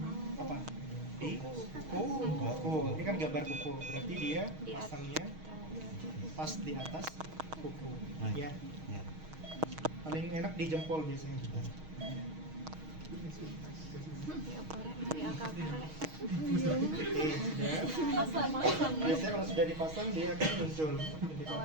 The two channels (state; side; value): late; left; 6.4 ms